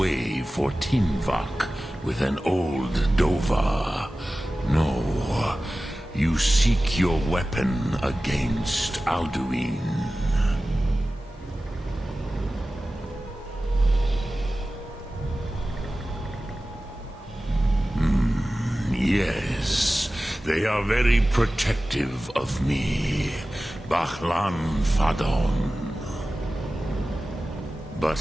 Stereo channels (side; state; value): both; normal; correlation 0.96